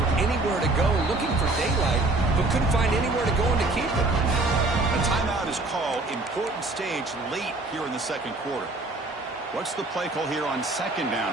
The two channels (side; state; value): left; quieter; 3.1 dB